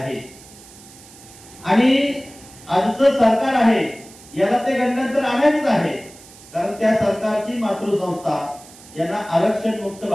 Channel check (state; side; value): noise; right; hiss, 21 dB below the sound